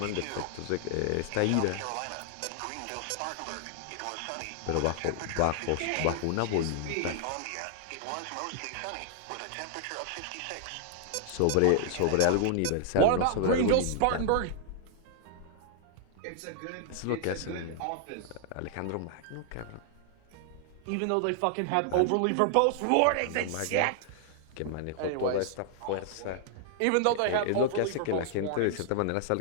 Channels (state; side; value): different; both; correlation 0.00